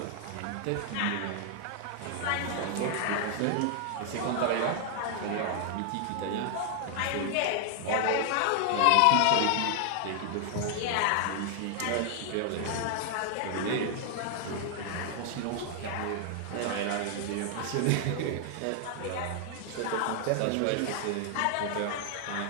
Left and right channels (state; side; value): different; both; correlation 0.00